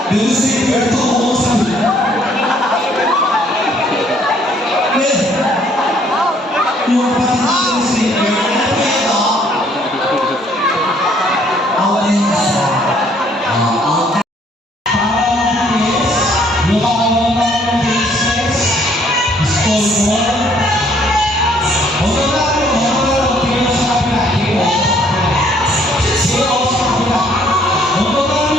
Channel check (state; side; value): normal; both; correlation 0.64